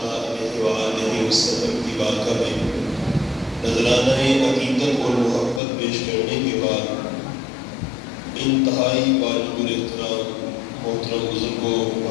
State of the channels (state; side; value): drops out; right; at 5.6 s